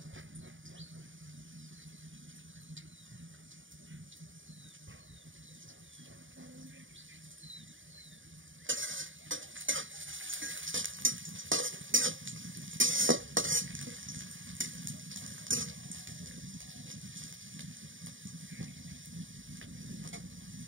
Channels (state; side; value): late; left; 0.57 ms